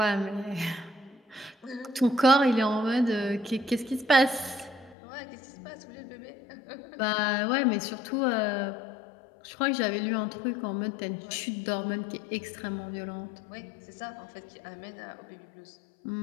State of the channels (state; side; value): drops out; right; at 5.0 s